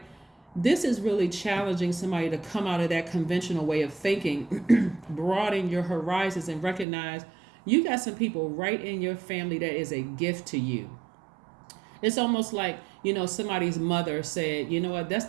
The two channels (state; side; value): drops out; left; at 6.9 s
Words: This is really challenging somebody to come out of that conventional way of thinking, broaden your horizons, and recognize you got some people right in your family that is a gift to you. It's almost like, somebody's mother said, you know what, that's